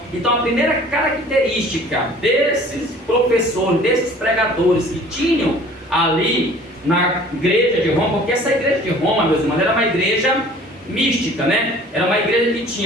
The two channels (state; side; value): normal; both; correlation 0.49